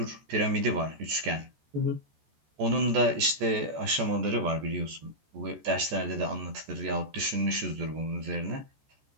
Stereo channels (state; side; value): late; left; 14 ms